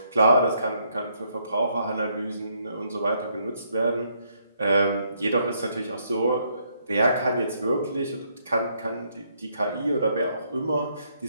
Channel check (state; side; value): inverted; both; correlation -0.72